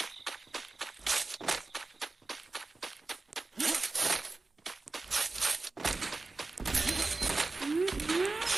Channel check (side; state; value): left; quieter; 3.5 dB